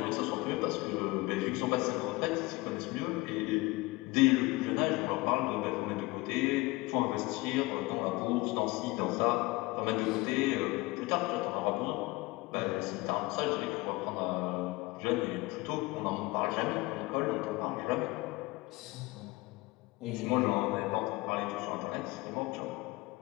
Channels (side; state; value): right; quieter; 22.2 dB